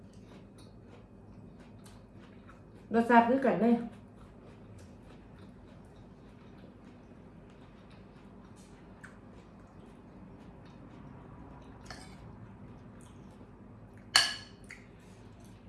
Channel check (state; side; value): identical; both; correlation 1.00